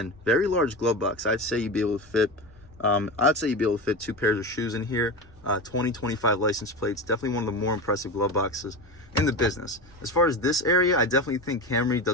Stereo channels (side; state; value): both; normal; correlation 0.24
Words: very large glove box. I'd say you'd be able to fit 2 pairs of shoes in here. 2025 license plates. Definitely one of the more impressive glove boxes in the business. As far as this area, I definitely think Camry